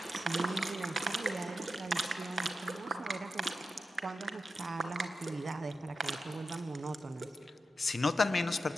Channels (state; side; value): normal; both; correlation 0.90